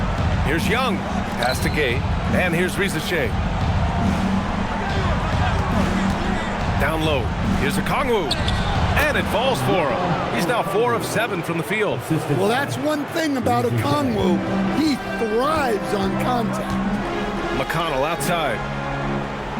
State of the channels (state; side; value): identical; both; correlation 1.00